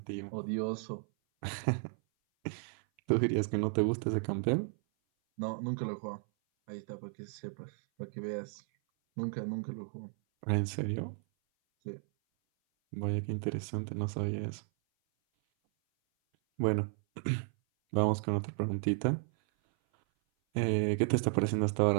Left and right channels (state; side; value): silent; left; 55 dB below the other